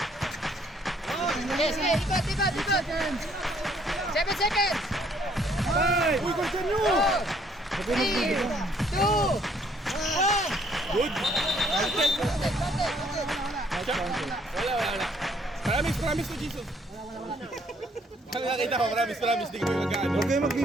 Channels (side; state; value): both; normal; correlation 0.64